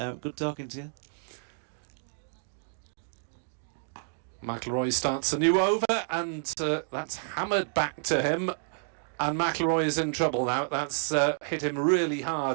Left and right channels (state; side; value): silent; left; digital silence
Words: talking to you. McIlroy starts a new over, and that's hammered back to him, and McIlroy is in trouble now. That's hit him really